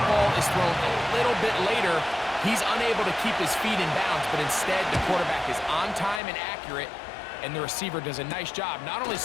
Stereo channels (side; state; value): right; drops out; at 6.2 s